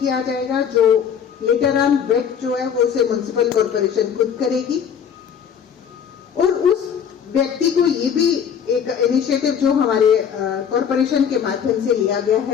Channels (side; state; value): right; quieter; 7.8 dB